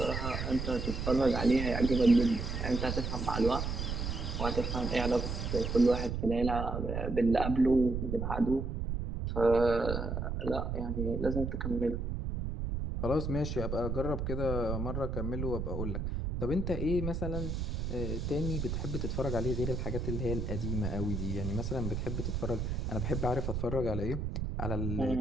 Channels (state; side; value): noise; right; rumble, 2 dB below the sound